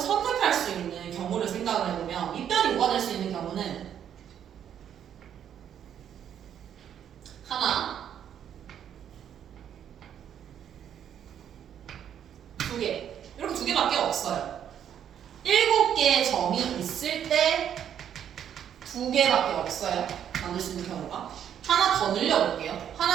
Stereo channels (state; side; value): quieter; left; 9.3 dB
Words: 수 있는 경우를 생각을 해보면 밑변이 5가 될 수 있는 경우는 하나, 2개 이렇게 2개밖에 없어요. 7개의 점이 있을 때 2개밖에 없어요. 만들 수 있는 경우가. 하나 더 늘려볼게요.